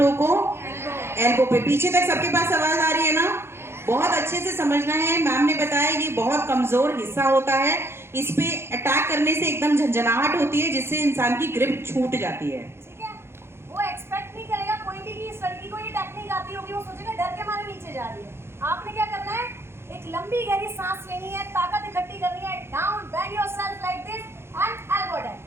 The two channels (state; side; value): late; left; 0.12 ms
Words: को? एल्बो पे। पीछे तक सबके पास आवाज आ रही है ना? बहुत अच्छे से समझना है। मैम ने बताया ये बहुत कमजोर हिस्सा होता है, इस पे अटैक करने से एकदम झंझनाहट होती है जिससे इंसान की ग्रिप छूट जाती है, ठीक है। वो एक्सपेक्ट नहीं करेगा कोई भी कि इस लड़की को ये टेक्निक आती होगी, वो सोचेगा डर के मारे नीचे जा रही है। आपने क्या करना है, एक लंबी गहरी सांस लेनी है, ताकत इकट्ठी करनी है, down bend yourself like this and elbow down.